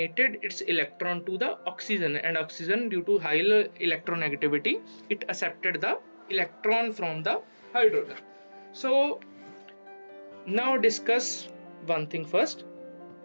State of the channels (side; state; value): both; inverted; correlation -1.00